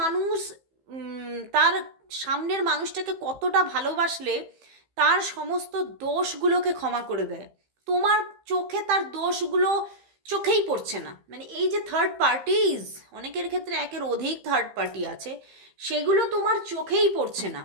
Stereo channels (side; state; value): left; late; 15 ms